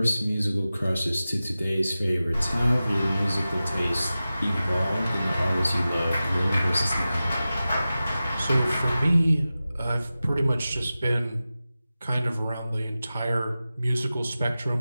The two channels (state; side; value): inverted; both; correlation -0.95